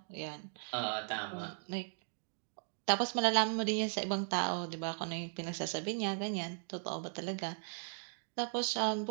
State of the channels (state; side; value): silent; left; digital silence